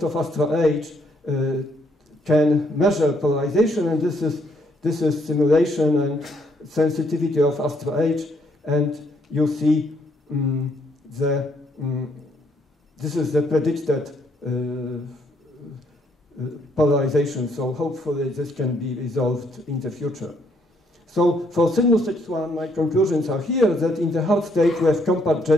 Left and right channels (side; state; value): both; normal; correlation 0.71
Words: of Astra H can measure polarization, and this is simulation and sensitivity of Astra H, and you see this is the predicted polarization, so hopefully this can be resolved in the future. So for sinus X1, my conclusions are here that in the hard state we have compact